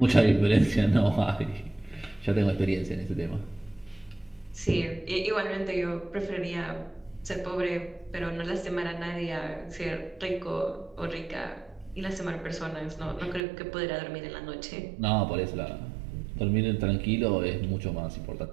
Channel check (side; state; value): left; drops out; at 13.4 s